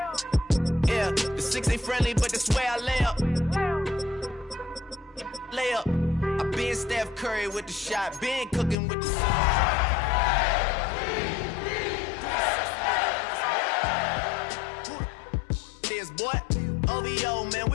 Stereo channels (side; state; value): right; drops out; at 8.8 s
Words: Yeah, the 6 ain't friendly, but that's where I lay up. Lay up. I been Steph Curry with the shot, been cooking with the sauce. Boy, OVO, man,